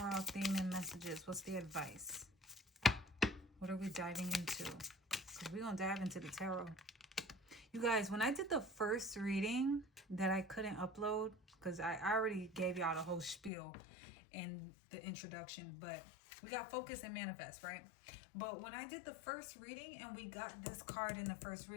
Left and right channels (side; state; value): right; drops out; at 13.5 s